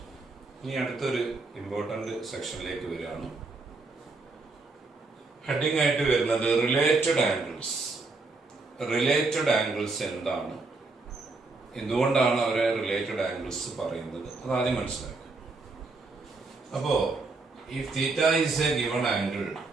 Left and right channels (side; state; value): left; quieter; 3.7 dB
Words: ഇനി അടുത്തൊരു ഇമ്പോർട്ടൻ്റ് സെക്ഷനിലേക്ക് വരികയാണ്. ഹെഡിങ് ആയിട്ട് വരുന്നത് റിലേറ്റഡ് ആംഗിൾസ്. റിലേറ്റഡ് ആംഗിൾസ് എന്താണ്, എന്തുകൊണ്ടാണ് അവരെ റിലേറ്റഡ് ആംഗിൾസ് പറയുന്നത്, അതാദ്യം മനസ്സിലാക്കുക. അപ്പോൾ if theta is a given angle,